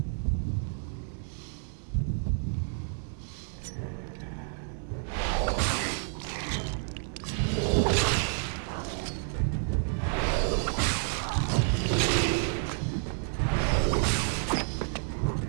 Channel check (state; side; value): silent; left; 58 dB below the other